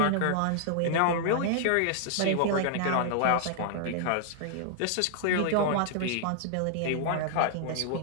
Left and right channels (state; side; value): different; both; correlation -0.01